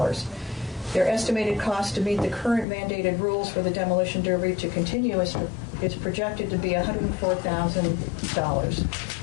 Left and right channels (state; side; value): drops out; right; at 2.7 s